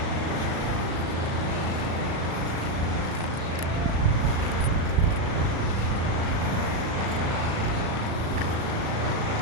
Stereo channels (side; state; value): left; late; 36 ms